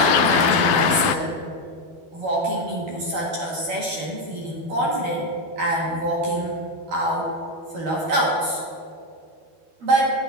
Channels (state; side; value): late; left; 12 ms